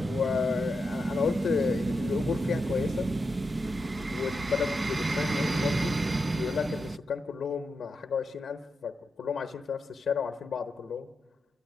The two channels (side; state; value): both; normal; correlation 0.86